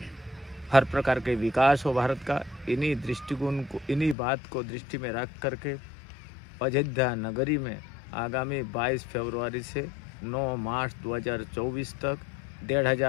हर प्रकार के विकास हो भारत का। इन्हीं दृष्टिकोण को, इन्हीं बात को दृष्टि में रख करके अयोध्या नगरी में आगामी 22 फरवरी से 9 मार्च 2024 तक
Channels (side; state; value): right; drops out; at 4.2 s